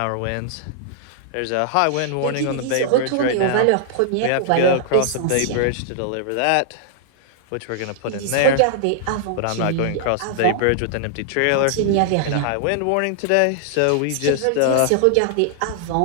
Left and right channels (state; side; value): different; both; correlation -0.01